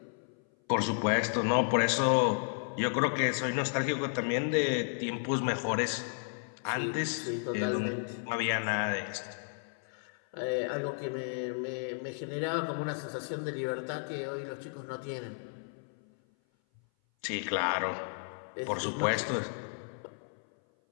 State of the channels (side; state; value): right; silent; 56 dB below the other